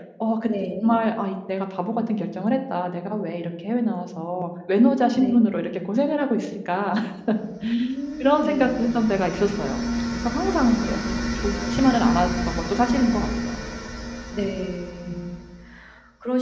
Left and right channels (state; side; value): identical; both; correlation 1.00